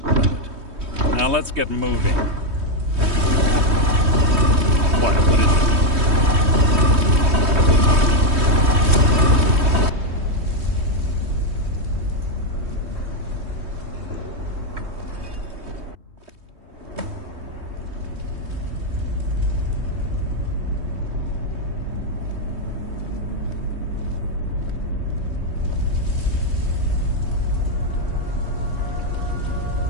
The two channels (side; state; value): left; late; 3.2 ms